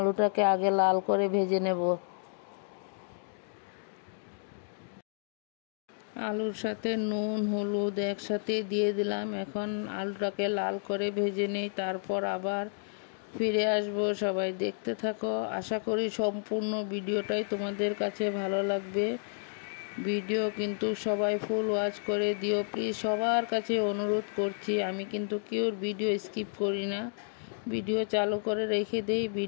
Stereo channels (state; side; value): silent; right; digital silence